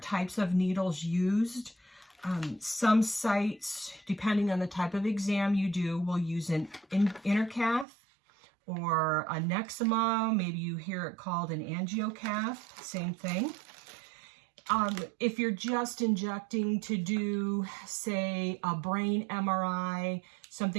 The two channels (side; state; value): left; drops out; at 7.9 s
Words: types of needles used. Some sites, depending on the type of exam you do, will use an intercath or a nexima. Maybe you hear it called an angiocath, same thing. If you're just injecting to do, say, a brain MRI,